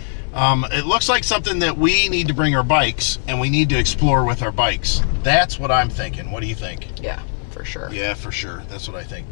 It looks like something that we need to bring our bikes, and we need to explore with our bikes. That's what I'm thinking. What do you think? Yeah, for sure. Yeah, for sure. That's what I think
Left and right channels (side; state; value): right; silent; 65 dB below the other